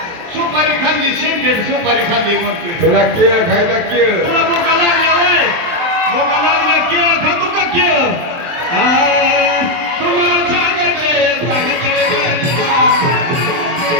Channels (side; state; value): left; late; 23 ms